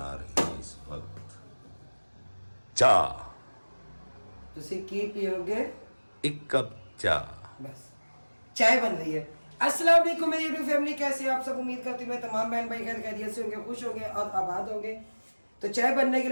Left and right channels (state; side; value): inverted; both; correlation -1.00